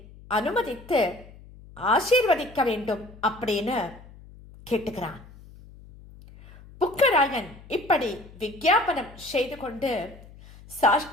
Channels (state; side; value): noise; left; hum, 20 dB below the sound